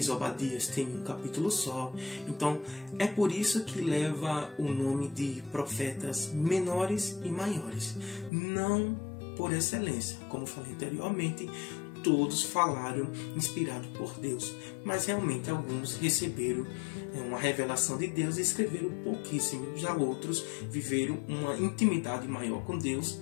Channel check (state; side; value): drops out; right; at 8.3 s